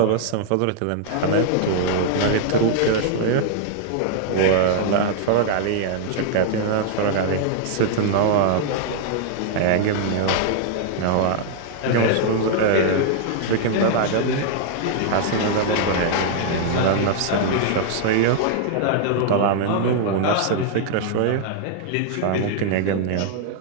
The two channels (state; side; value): different; both; correlation -0.01